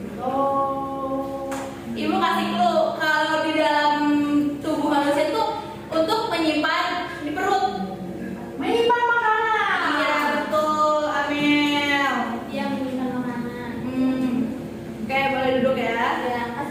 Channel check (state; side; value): identical; both; correlation 1.00